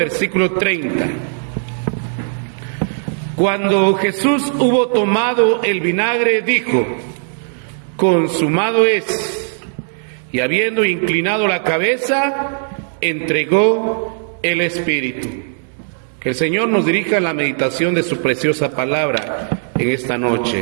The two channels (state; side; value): silent; left; 62 dB below the other